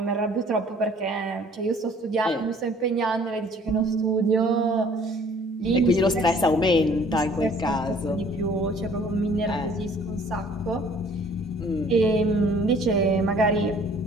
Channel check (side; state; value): both; normal; correlation 0.55